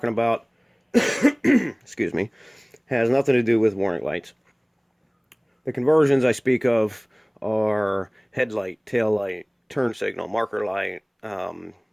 about, excuse me, has nothing to do with warning lights. The conversions I speak of are headlight, tail light, turn signal, marker light, and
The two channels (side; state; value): both; identical; correlation 1.00